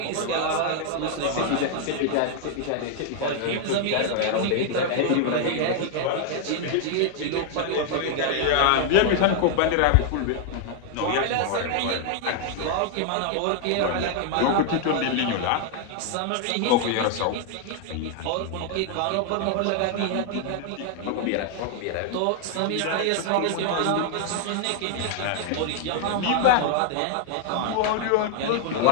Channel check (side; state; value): both; different; correlation 0.00